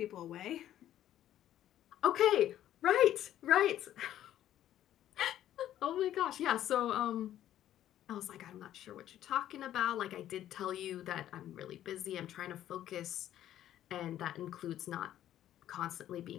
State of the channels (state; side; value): quieter; right; 12.1 dB